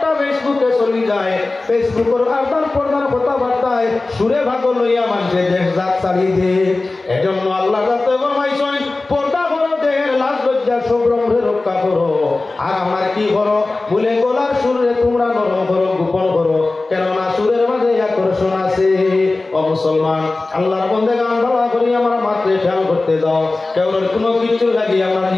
ফেসবুকে চলে যায়, ফেসবুকের আদান প্রদান কথাবার্তায় সুরে ভাগ লইয়া মানুষের দেশ জাত ছাড়ি দে। এজন্য আল্লাহ যাতে ফরমাইছেন পর্দা করো, দেহের লাজ লজ্জা সম্ভ্রমে রক্ষা করো। আর আমার কি করো বলে গলার সুরে তোমরা নরম করো, গোপন করো, কেননা সুরের মাঝে আকর্ষণ আছে। ও মুসলমান, আল্লাহর বন্দে গান ভালো করি আমার মাত্রে খেয়াল করতে যাও, কেবল কোনো কিছু লাগি আমার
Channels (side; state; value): right; quieter; 3.3 dB